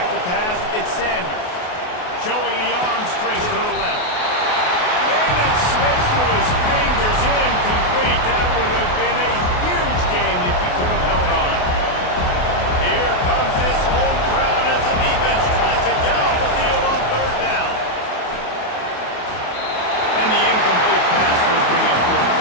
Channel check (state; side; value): late; right; 28 ms